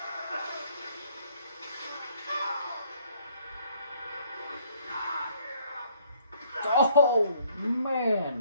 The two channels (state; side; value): inverted; both; correlation -0.64